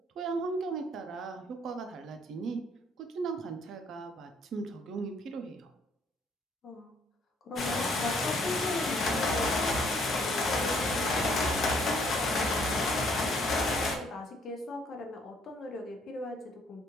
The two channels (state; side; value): normal; both; correlation 0.65